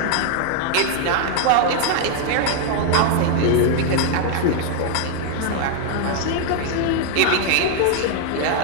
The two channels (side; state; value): both; different; correlation 0.00